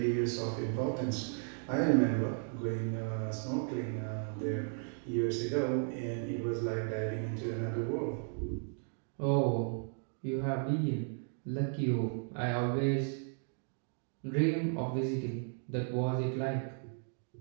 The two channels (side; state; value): left; silent; 54 dB below the other